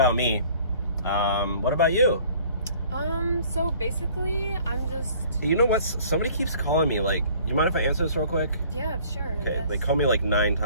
me. What about you? So basically, I'm just... You know what? Somebody keeps calling me. Like, you mind if I answer this real quick? Yeah, sure. I Okay, guess. they call me like 9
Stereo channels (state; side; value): inverted; both; correlation -0.54